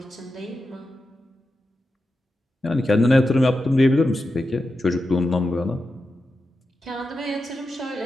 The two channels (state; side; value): normal; both; correlation 0.90